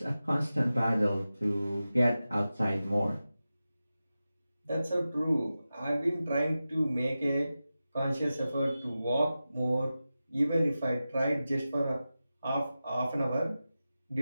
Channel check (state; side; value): inverted; both; correlation -0.94